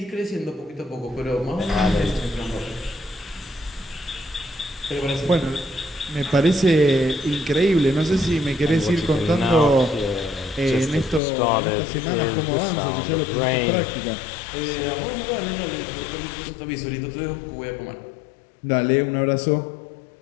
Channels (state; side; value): drops out; right; at 11.2 s